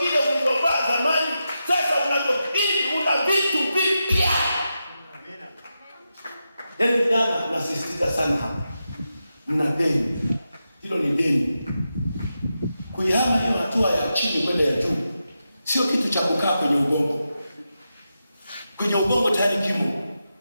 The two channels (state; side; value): inverted; both; correlation -0.89